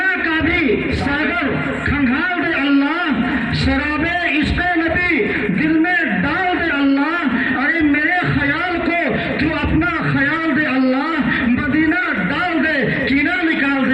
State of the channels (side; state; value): left; noise; rumble, 30 dB below the sound